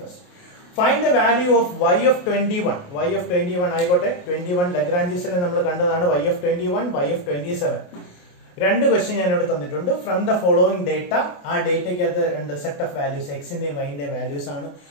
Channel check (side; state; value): right; late; 28 ms